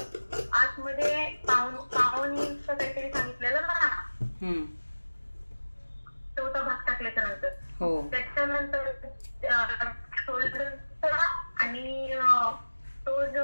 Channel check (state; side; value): inverted; both; correlation -1.00